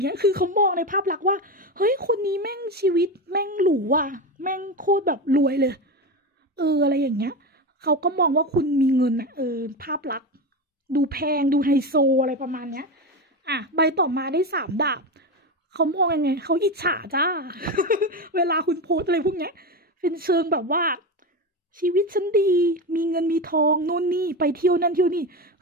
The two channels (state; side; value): normal; both; correlation 0.19